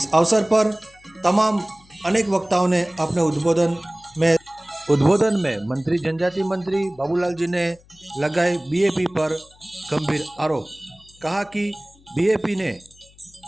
अवसर पर तमाम अनेक वक्ताओं ने अपने उद्बोधन में मंत्री जनजाति मंत्री बाबूलाल जी ने लगाए बीएपी पर गंभीर आरोप। कहा कि बीएपी ने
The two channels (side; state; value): left; noise; hum, 28 dB below the sound